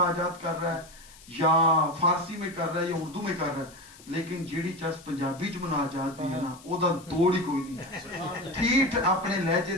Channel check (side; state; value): left; noise; hiss, 22 dB below the sound